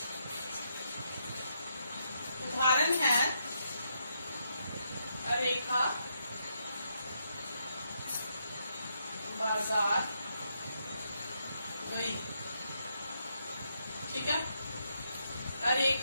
उदाहरण है रेखा बाजार गई। ठीक है।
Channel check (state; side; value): inverted; both; correlation -0.78